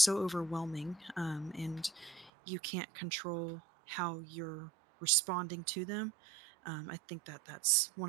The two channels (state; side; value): drops out; left; at 2.3 s